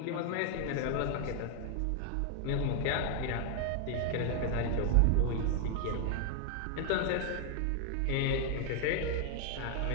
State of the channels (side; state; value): both; different; correlation 0.00